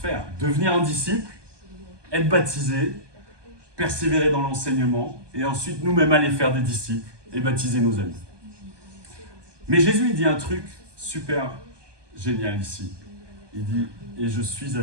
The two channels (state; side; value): late; left; 1.2 ms